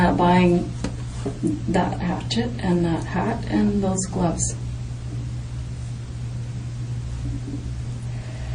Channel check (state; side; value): identical; both; correlation 1.00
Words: buying that hatchet and that hat and those gloves.